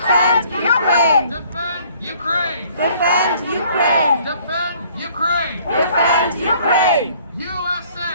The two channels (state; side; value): inverted; both; correlation -0.58